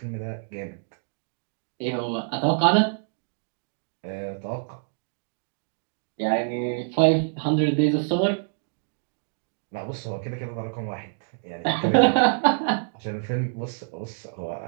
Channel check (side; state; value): left; silent; digital silence